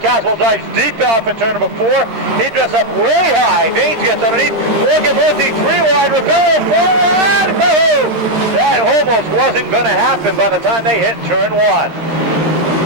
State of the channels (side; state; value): left; late; 13 ms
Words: dives deep off in turn number 4. He dressed up way high. Vaines gets underneath. Morgan Murphy 3 wide. Rebello 4 wide. That almost wasn't going to happen by the time they hit turn 1.